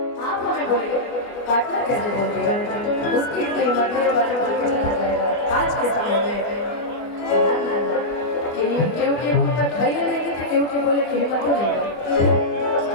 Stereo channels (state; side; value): late; right; 24 ms